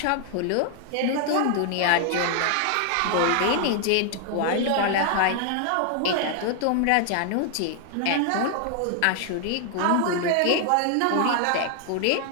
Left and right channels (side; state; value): both; different; correlation 0.00